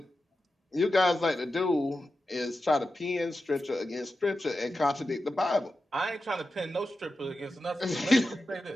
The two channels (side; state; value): both; normal; correlation 0.92